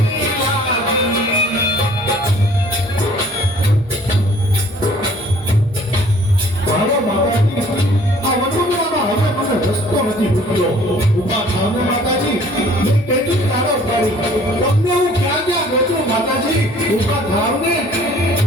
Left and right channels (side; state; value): both; normal; correlation 0.54